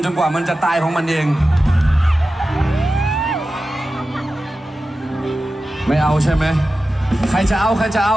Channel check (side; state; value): both; normal; correlation 0.93